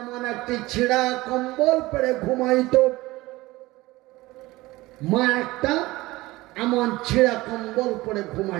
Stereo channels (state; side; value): quieter; left; 19.6 dB